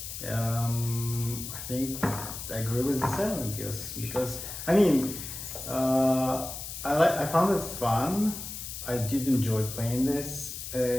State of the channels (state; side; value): noise; left; hiss, 8 dB below the sound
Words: think I agree with the 7 because I mean, I found it fun. I did enjoy playing this.